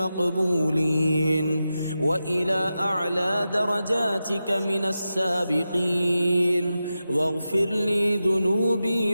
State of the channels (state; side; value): inverted; both; correlation -0.91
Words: وإلى أعلى درجاتك من السابقين، واغفر لي